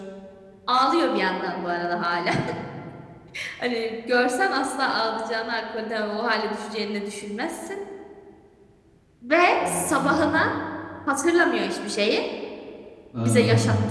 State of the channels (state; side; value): identical; both; correlation 1.00